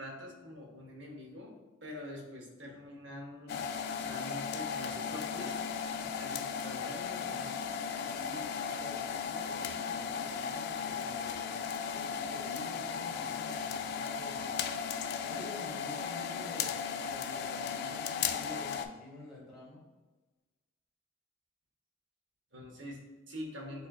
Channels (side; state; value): right; quieter; 5.8 dB